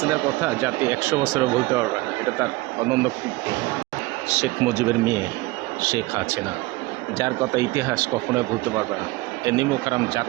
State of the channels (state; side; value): quieter; left; 21.2 dB